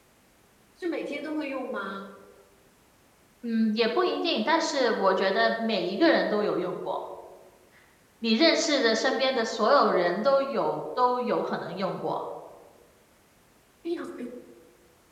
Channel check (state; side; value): identical; both; correlation 1.00